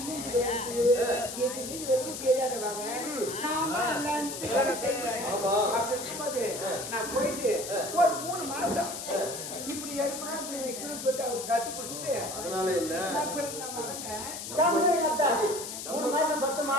நான் போயிட்டு ஒரு 3 மாசம் இப்படி எடுக்கணும் இப்படி வைக்கணும்னு சொல்லிட்டு அவருக்கு கத்து பிடிச்சிட்டு அதனால என்ன 3 மாசம் பத்துமா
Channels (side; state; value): left; noise; hiss, 7 dB below the sound